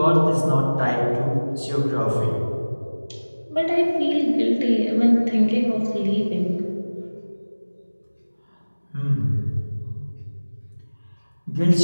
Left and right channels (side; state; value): both; inverted; correlation -1.00